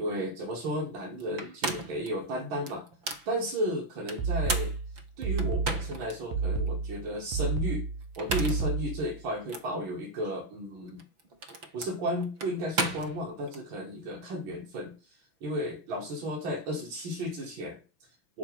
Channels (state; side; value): late; left; 5.9 ms